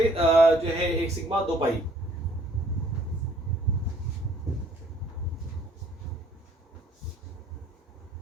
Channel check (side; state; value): both; normal; correlation 0.60